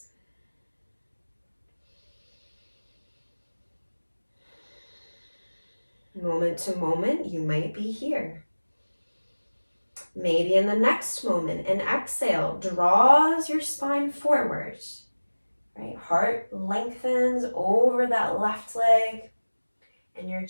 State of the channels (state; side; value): inverted; both; correlation -1.00